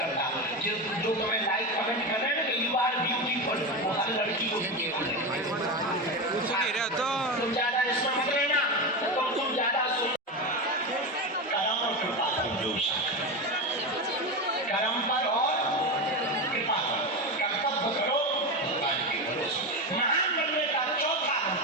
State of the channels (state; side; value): normal; both; correlation 0.18